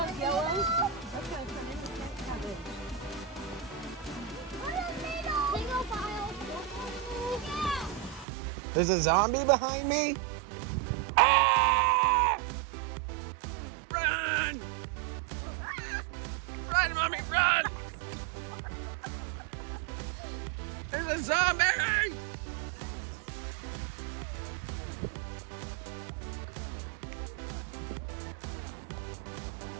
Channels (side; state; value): left; drops out; at 8.2 s